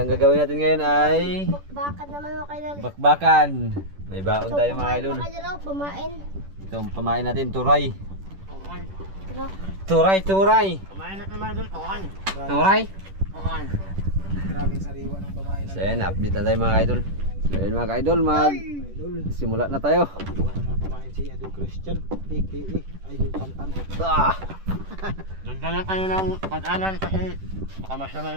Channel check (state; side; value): late; left; 10 ms